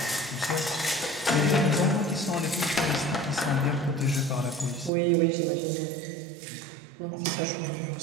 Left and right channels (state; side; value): drops out; left; at 4.9 s